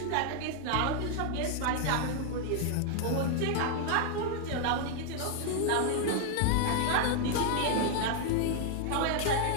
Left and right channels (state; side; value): different; both; correlation 0.00